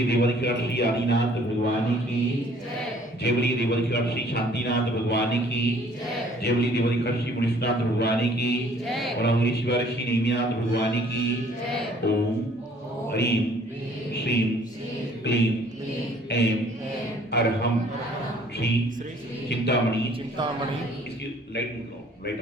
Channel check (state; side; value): normal; both; correlation 0.57